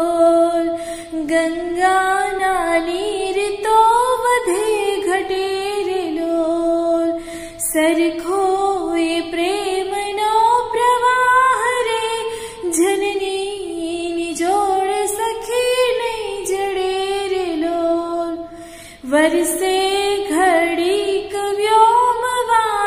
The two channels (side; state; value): both; identical; correlation 1.00